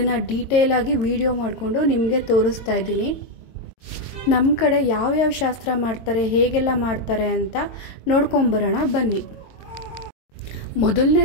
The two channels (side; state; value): right; late; 22 ms